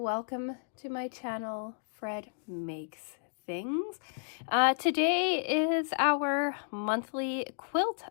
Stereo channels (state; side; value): silent; right; digital silence